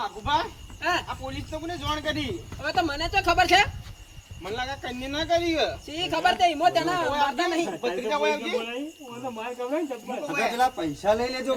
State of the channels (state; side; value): identical; both; correlation 1.00